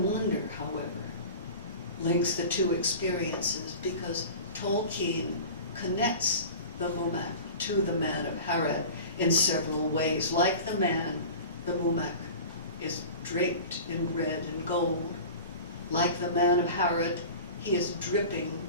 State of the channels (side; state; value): both; inverted; correlation -0.36